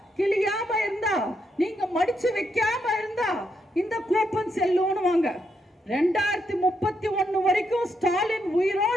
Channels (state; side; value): normal; both; correlation 0.79